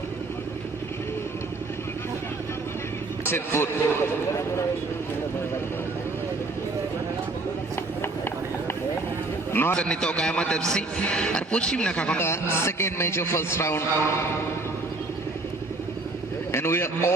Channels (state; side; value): quieter; left; 3.3 dB